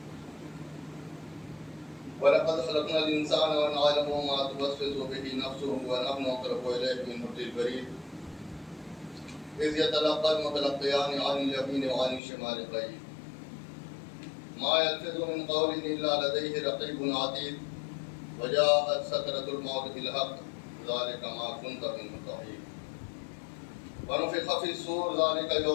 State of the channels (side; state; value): right; drops out; at 12.2 s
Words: ولقد خلقنا الإنسان ونعلم ما توسوس به نفسه ونحن أقرب إليه من حبل الوريد إذ يتلقى المتلقيان عن اليمين وعن الشمال قعيد ما يلفظ من قول إلا لديه رقيب عتيد وجاءت سكرة الموت بالحق ذلك ما كنت منه تحيد ونفخ في الصور ذلك